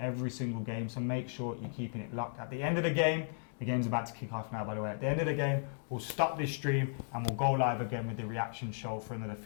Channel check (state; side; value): silent; right; digital silence